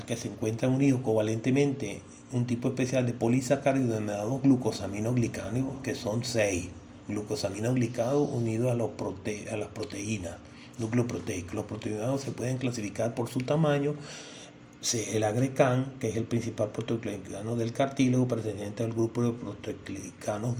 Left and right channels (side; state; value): both; identical; correlation 1.00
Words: que se encuentra unido covalentemente un tipo especial de polisacáridos denominados glucosaminoglicanos, que son 6 glucosaminoglicados unidos a las proteínas, núcleo proteico. Los proteinados se pueden clasificar por su tamaño. El agrecan, que es el principal proteoglicano del cartílago, perteneciente al grupo de proteoglicanos